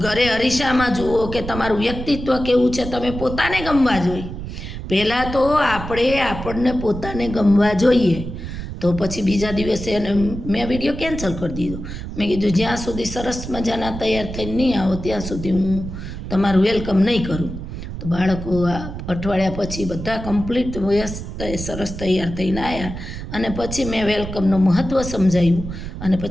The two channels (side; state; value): right; noise; rumble, 8 dB below the sound